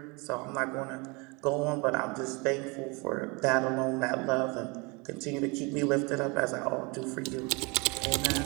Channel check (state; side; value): quieter; left; 28.4 dB